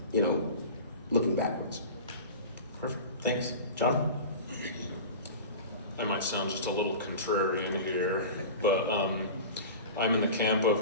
looking backwards. Perfect, thanks. John? I might sound just a little contrarian here, but I'm in the camp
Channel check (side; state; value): both; inverted; correlation -0.34